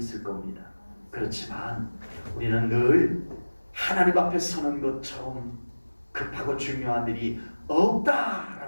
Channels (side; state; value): both; inverted; correlation -1.00